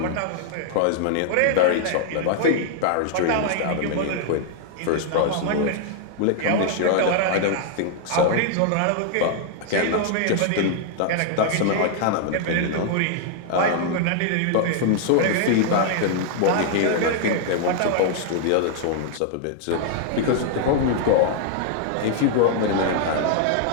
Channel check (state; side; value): different; both; correlation 0.00